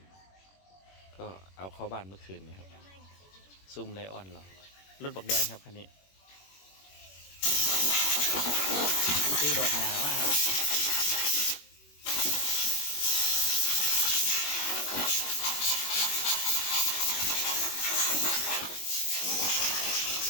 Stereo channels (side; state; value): right; late; 21 ms